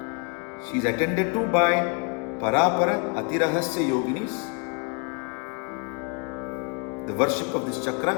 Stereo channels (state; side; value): quieter; right; 36.1 dB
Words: She is attended to by Parapara Atirahasya Yoginis. The worship of this chakra